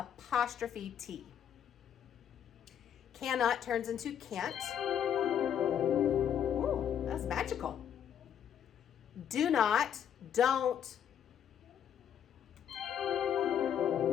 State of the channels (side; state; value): right; quieter; 9.1 dB